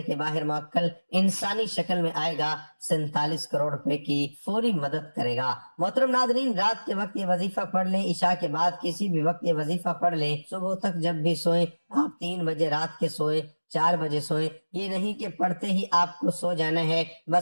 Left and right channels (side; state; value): both; inverted; correlation -1.00